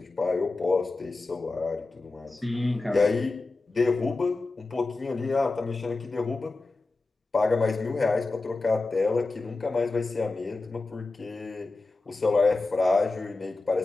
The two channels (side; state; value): right; quieter; 3.4 dB